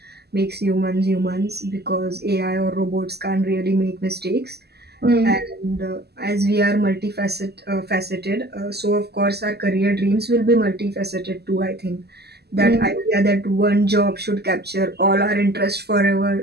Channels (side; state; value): left; late; 0.47 ms